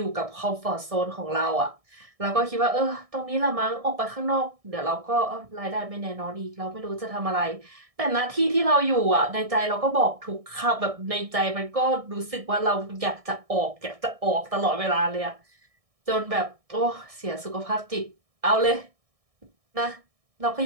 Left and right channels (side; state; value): left; late; 1.6 ms